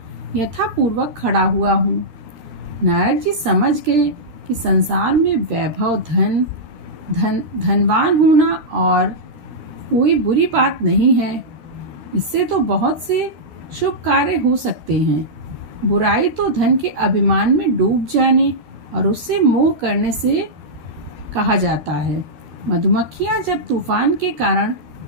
यथापूर्वक खड़ा हुआ हूँ। नारद जी समझ गए कि संसार में वैभव, धनवान होना और कोई बुरी बात नहीं है। इससे तो बहुत से शुभ कार्य हो सकते हैं। बुराई तो धन के अभिमान में डूब जाने और उससे मोह करने से कहा जाता है। मधुमक्खियाँ जब तूफान के कारण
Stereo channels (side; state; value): left; late; 13 ms